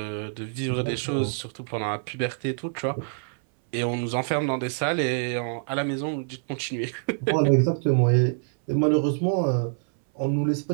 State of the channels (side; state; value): left; silent; 60 dB below the other